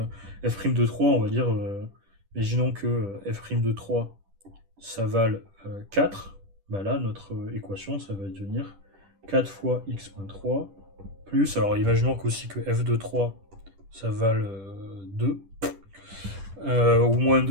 f' de 3, on va dire, imaginons que f' de 3 ça vale 4. Bah là, notre équation, ça va devenir 4 fois x.3 plus, alors imaginons aussi que f de 3, ça vale 2, ou moins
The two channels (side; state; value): left; late; 10 ms